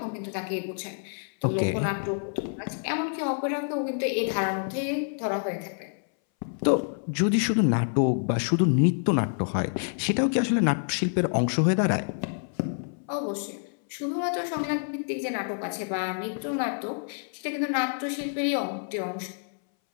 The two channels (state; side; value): silent; right; 60 dB below the other